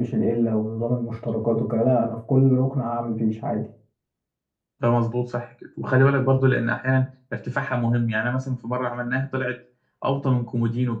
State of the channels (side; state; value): both; identical; correlation 1.00